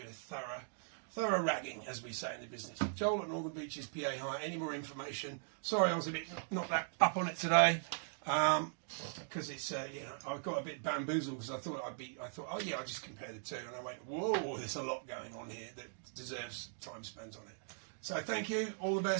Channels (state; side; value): silent; left; digital silence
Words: a thorough ragging, as we say in the business. Joel at Northern Beaches, PA Hire. Any more information? Sorry, I was a bit not that up on it today. Because it's you know, I got a bit bamboozled because I thought oh yeah, I'll just compare the two, and I went, whoa, there's a lot going on here that deserves time spent on it. So thank you, all the